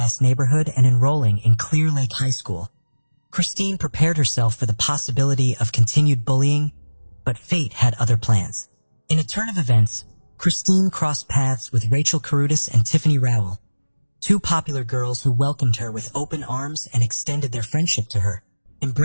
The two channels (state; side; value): inverted; both; correlation -1.00